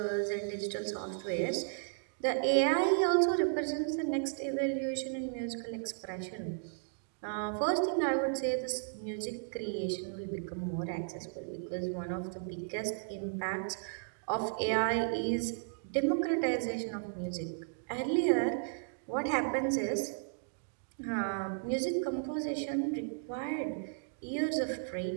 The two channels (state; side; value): silent; left; digital silence